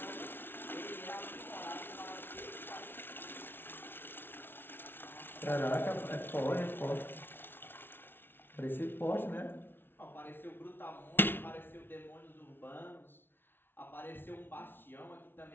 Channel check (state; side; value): late; right; 0.10 ms